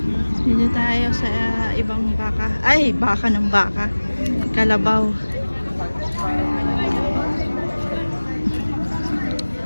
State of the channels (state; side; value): inverted; both; correlation -1.00